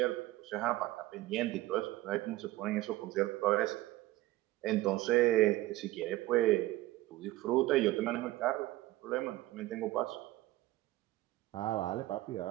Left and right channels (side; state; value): left; quieter; 17.5 dB